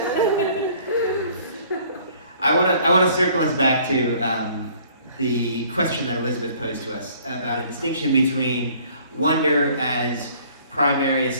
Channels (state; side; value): inverted; both; correlation -0.56